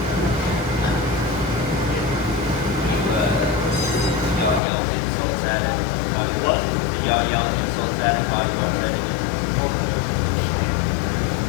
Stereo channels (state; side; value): drops out; right; at 4.6 s